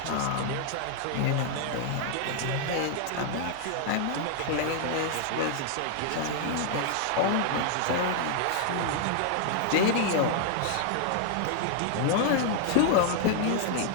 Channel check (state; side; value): different; both; correlation 0.00